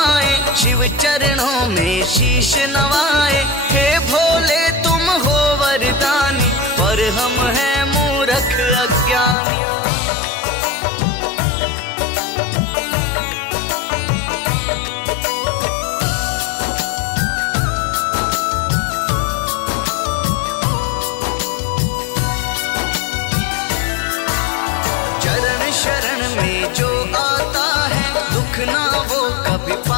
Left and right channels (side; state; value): right; drops out; at 9.3 s